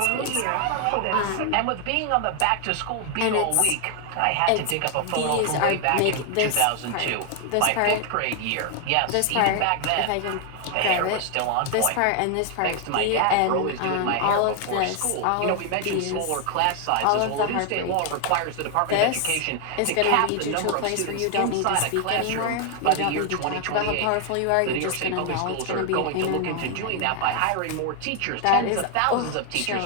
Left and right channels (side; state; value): both; different; correlation 0.00